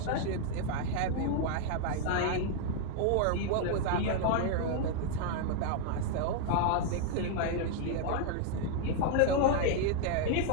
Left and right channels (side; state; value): both; different; correlation 0.00